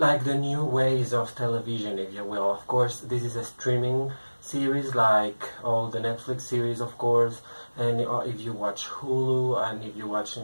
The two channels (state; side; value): inverted; both; correlation -1.00